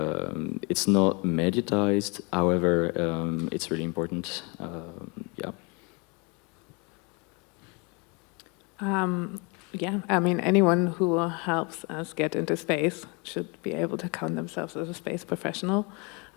It's not mediatized, however, it's really important. Yeah. Yeah, I mean, anyone who helps us get into space should be able to count themselves as a space professional.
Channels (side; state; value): right; quieter; 30.9 dB